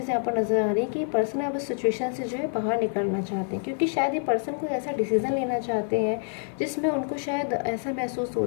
यहाँ पर नज़र आ रही है कि पर्सन अब इस सिचुएशन से जो है बाहर निकलना चाहते हैं, क्योंकि शायद ये पर्सन कोई ऐसा डिसीज़न लेना चाहते हैं जिसमें उनको शायद ऐसा महसूस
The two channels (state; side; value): silent; right; 56 dB below the other